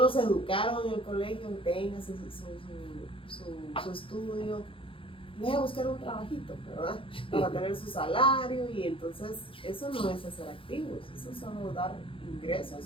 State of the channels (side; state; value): right; late; 0.26 ms